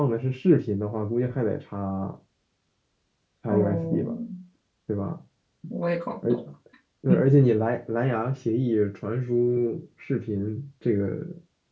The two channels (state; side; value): identical; both; correlation 1.00